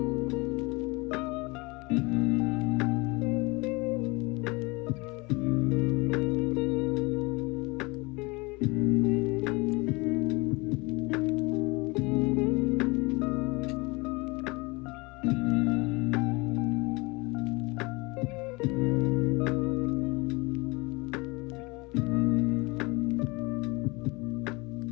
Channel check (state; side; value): quieter; right; 25.7 dB